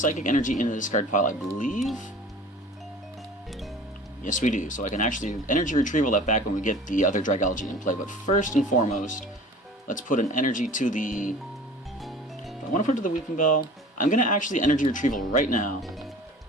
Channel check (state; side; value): normal; both; correlation 0.43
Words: Energy in the discard pile, I believe. Yes, we do. So I can actually energy retrieval that back when we get the other Dragalge in play. But first and foremost, let's put an energy to the... If I want to put it to the Weepinbell, I'm going to actually energy retrieval right now.